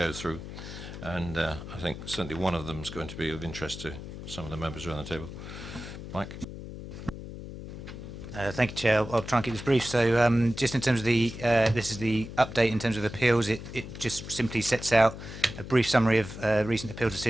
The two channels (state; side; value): noise; left; hum, 11 dB below the sound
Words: through. And I think certainly one of them is going to be of interest to some of the members around the table. Mike. Thank you, Chair. I'll try and keep this brief. So just in terms of the, this is the update in terms of appeals. It just simply sets out a brief summary of recent appeal